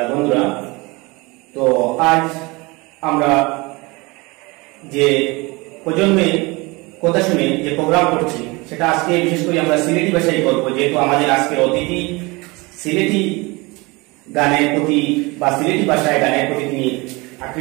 বন্ধুরা। তো আজ আমরা যে প্রজন্মের কথা শুনে যে প্রোগ্রাম করছি সেটা আজকে বিশেষ করে আমরা সিলেটি ভাষায় করব, যেহেতু আমাদের আজকে অতিথি সিলেটি গানের প্রতি বা সিলেটি ভাষায় গানের প্রতি তিনি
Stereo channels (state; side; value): quieter; left; 24.9 dB